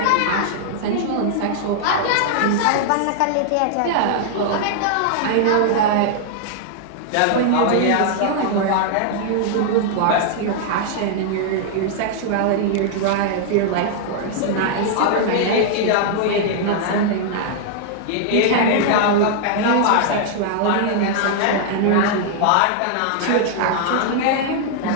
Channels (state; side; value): different; both; correlation -0.01